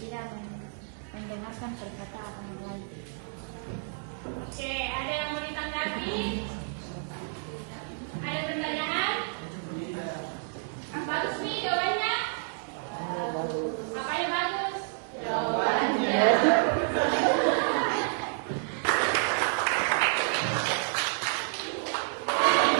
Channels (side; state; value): left; silent; 58 dB below the other